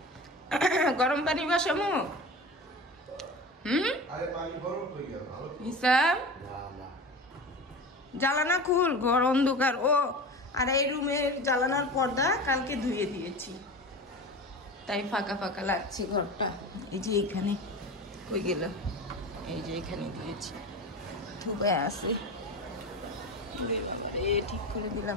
গরম পানি বসামো। হিসাম জ্বালানা খুল, ঘর অন্ধকার। ও আর এই রুমের জ্বালানার পর্দা কালকে ধুয়ে দিয়েছি, তাই ফাঁকা ফাঁকা লাগছে ঘরটা। এই যে এখানে কই গেল, এই যে এখানে দিয়েছি, ধুবে আছে। ঠিক করে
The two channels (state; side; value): normal; both; correlation 0.31